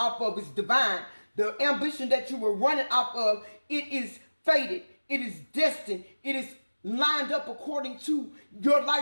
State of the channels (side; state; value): both; inverted; correlation -1.00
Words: of is divine. The ambition that you were running off of, it is fated. It is destined. It is lined up according to your